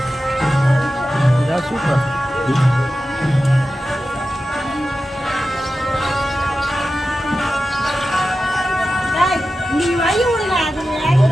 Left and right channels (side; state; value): both; normal; correlation 0.93